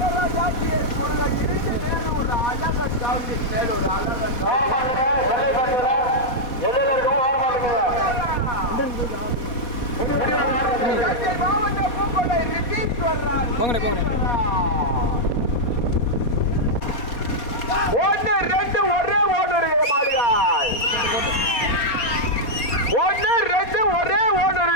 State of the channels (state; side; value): late; right; 4.2 ms